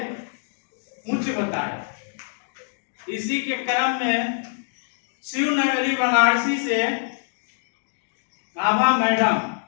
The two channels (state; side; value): silent; right; digital silence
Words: उच्च बताया। इसी के क्रम में शिवनगरी बनारसी से आभा मैडम